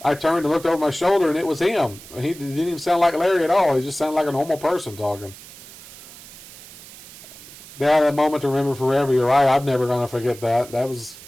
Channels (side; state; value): right; noise; hiss, 18 dB below the sound